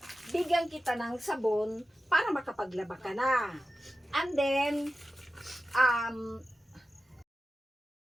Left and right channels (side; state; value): both; normal; correlation 0.94